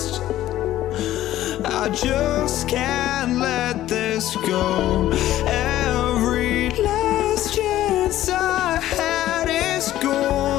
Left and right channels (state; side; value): quieter; right; 13.8 dB